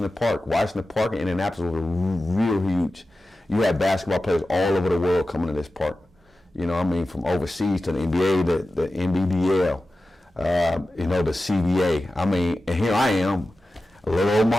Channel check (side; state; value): both; normal; correlation 0.94